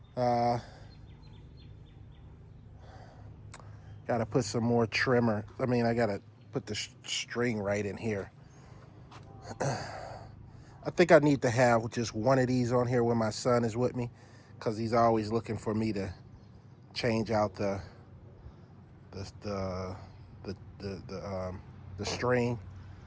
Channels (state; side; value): identical; both; correlation 1.00